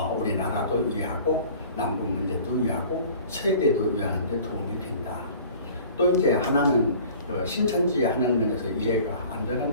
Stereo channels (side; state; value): both; inverted; correlation -0.47